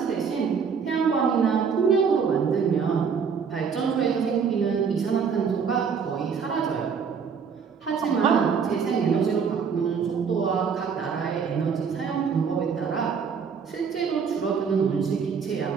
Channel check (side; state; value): left; quieter; 6.3 dB